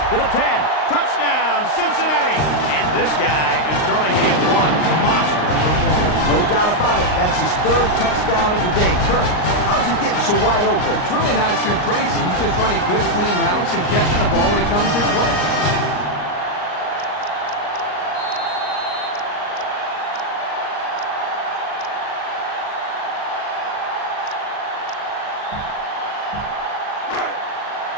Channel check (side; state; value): right; late; 39 ms